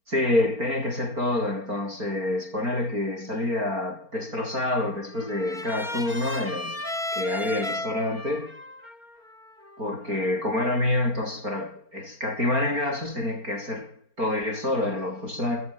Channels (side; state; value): left; late; 4.4 ms